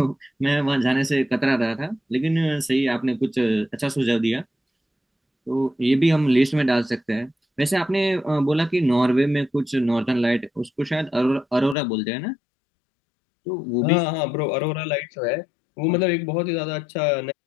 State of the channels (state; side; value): drops out; right; at 11.8 s